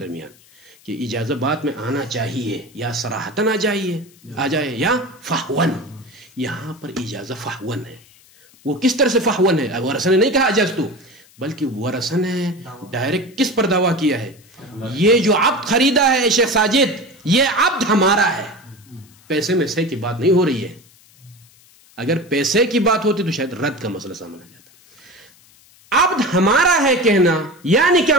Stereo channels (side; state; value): left; noise; hiss, 28 dB below the sound